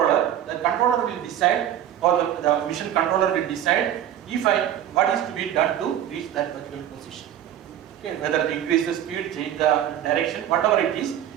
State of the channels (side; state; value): left; quieter; 10.9 dB